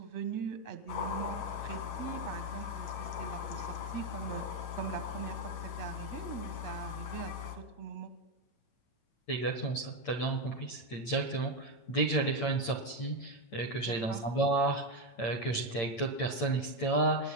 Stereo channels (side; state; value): right; late; 8.8 ms